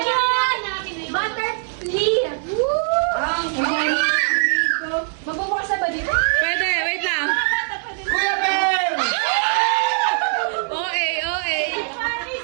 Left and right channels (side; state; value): left; silent; digital silence